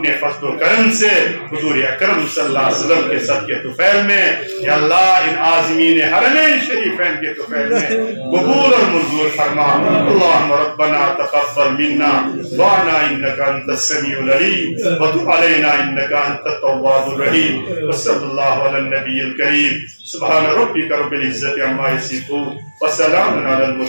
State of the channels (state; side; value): inverted; both; correlation -1.00